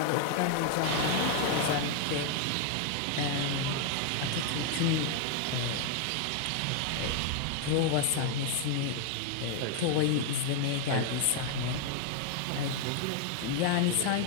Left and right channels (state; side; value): different; both; correlation 0.00